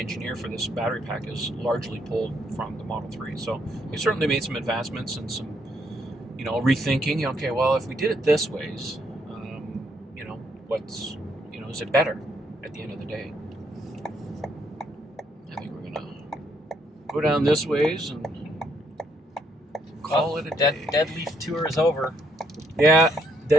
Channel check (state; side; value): normal; both; correlation 0.72